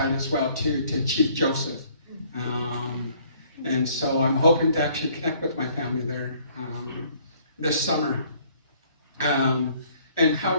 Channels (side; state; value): both; inverted; correlation -0.60